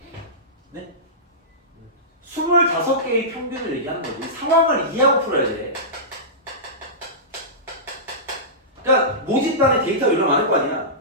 25개의 평균을 얘기하는 거지. 상황을 이해하고 풀어야 돼. 그러니까 모집단에 데이터가 얼마나 많을 거 아니야.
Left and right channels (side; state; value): both; normal; correlation -0.18